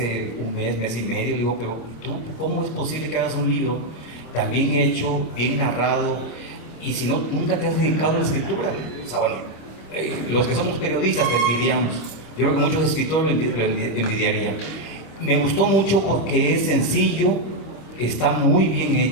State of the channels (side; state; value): right; late; 26 ms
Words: un mes y medio, le digo, pero ¿tú cómo es posible que hagas un libro tan bien hecho, bien narrado, y si no, nunca te has dedicado a la escritura? O sea, bueno, los que somos periodistas te envidiamos. Yo creo que muchos escritores lo envidiarían. Me gustó mucho porque es sencillo, está muy bien